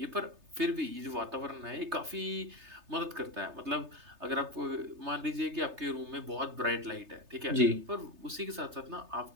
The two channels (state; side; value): late; left; 3.3 ms